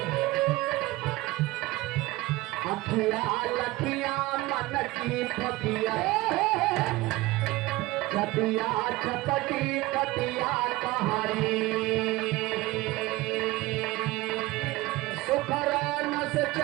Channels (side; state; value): left; quieter; 19.7 dB